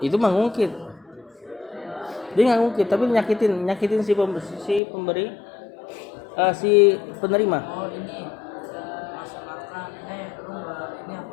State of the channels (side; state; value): right; drops out; at 4.8 s